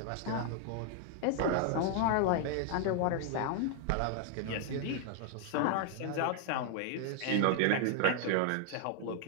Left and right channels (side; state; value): both; different; correlation 0.00